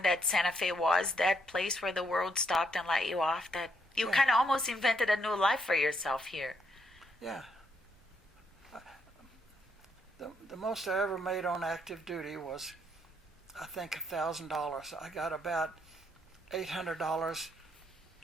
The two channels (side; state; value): both; normal; correlation 0.74